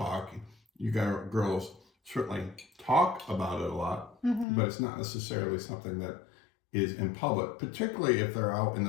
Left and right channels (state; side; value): drops out; right; at 4.5 s